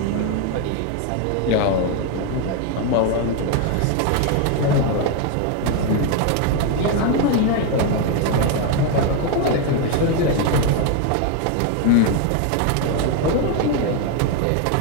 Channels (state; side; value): different; both; correlation 0.01